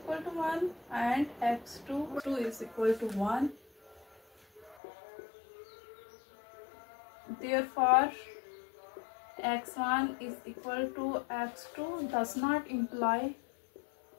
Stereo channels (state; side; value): drops out; right; at 4.8 s